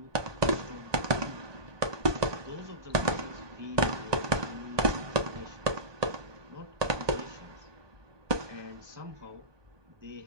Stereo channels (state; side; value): late; left; 1.2 ms